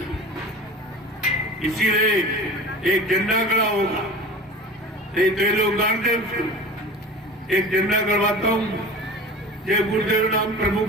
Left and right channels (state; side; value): normal; both; correlation 0.37